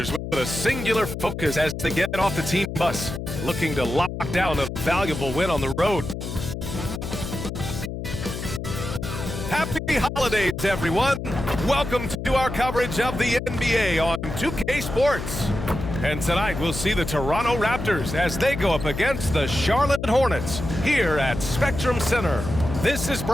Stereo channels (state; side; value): noise; left; hum, 6 dB below the sound